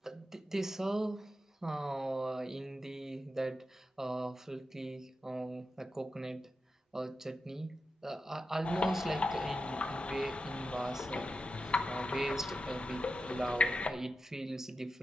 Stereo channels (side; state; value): both; normal; correlation 0.89